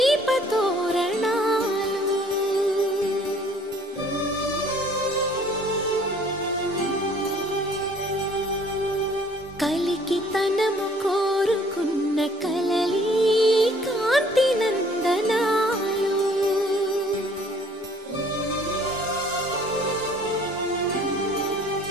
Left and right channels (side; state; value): both; normal; correlation 0.57